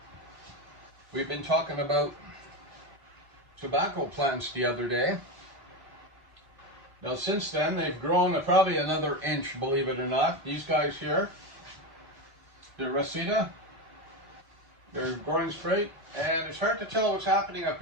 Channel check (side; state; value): left; late; 2.6 ms